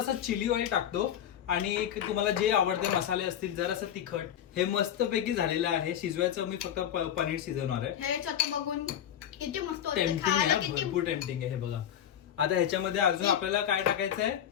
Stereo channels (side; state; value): right; quieter; 10.1 dB